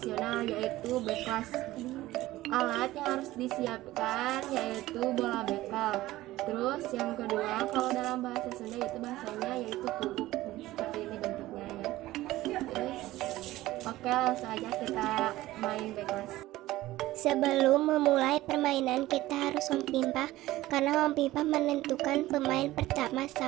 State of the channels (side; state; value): left; quieter; 16.7 dB